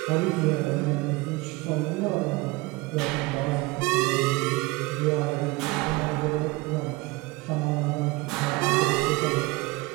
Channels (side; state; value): left; quieter; 22.9 dB